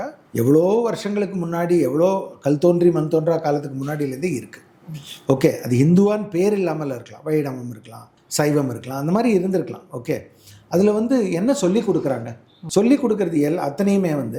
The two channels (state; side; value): identical; both; correlation 1.00